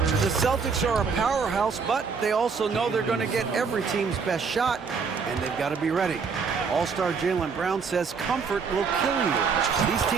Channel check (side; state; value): left; quieter; 5.5 dB